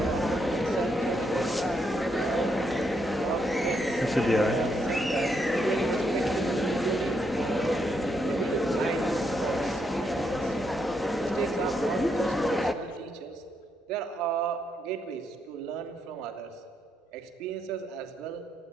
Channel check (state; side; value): normal; both; correlation 0.78